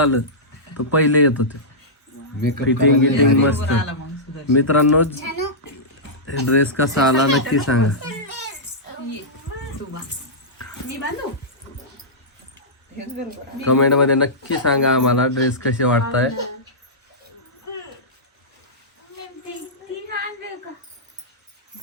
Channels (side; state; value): both; normal; correlation -0.14